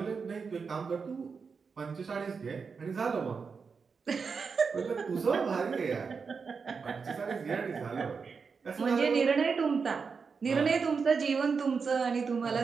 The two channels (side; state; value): left; quieter; 5.4 dB